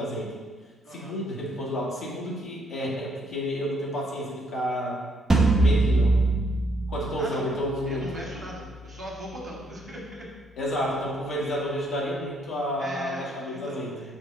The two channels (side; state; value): both; normal; correlation 0.70